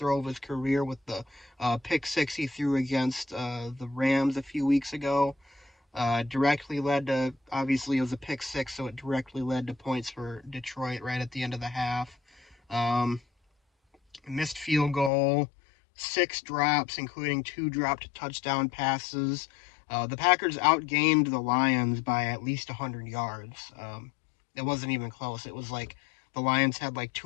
of his career with the pick six he threw against the Rams a few weeks ago. Directly led to, obviously, it was a pick six, so it directly led to points for Detroit right at the end of the half. Um, Missed field goal, six drops, including two dropped touchdown passes. The Packers outgained the Lions by at least 100 yards. It wasn't even close. It was like the Lions had like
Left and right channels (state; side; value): drops out; right; at 15.1 s